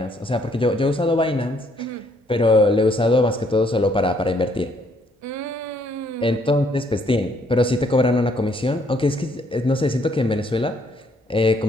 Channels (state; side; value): normal; both; correlation 0.68